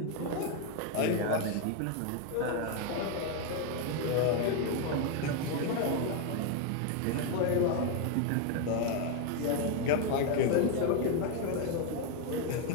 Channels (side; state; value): both; different; correlation 0.01